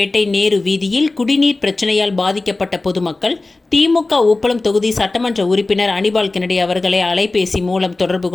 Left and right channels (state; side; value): quieter; right; 3.2 dB